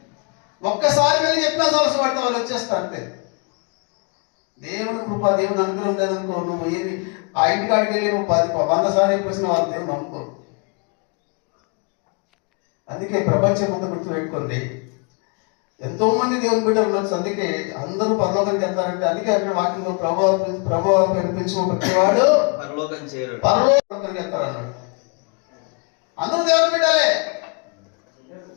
ఒక్కసారి వెళ్ళి చెప్పినా సరస్సు పడితే వాళ్ళు వచ్చేస్తారు అంతే. దేవుని కృప, దేవుని అనుగ్రహం లేదనుకో, నువ్వు ఏది ఆ ఇంటికాడికి వెళ్ళి నువ్వు 100 సార్లు చెప్పేసిన వాళ్ళు దేవుని నమ్ముకోరు. అందుకే ప్రపంచం అంతా గుర్తుపెట్టుకోండి, ఎంతో మంది దేవుని బిడ్డలు ఉండొచ్చు. అందుకే అందరూ పరలోకానికి వెళ్తారంటే అందుకే అక్కడ వాక్యంలో ప్రభు కనిపించిన ప్రతివాడు పరలోకానికి వెళ్తారన్నాడు. అందరూ దేవుని బిడ్డలే,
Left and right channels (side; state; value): right; quieter; 33.8 dB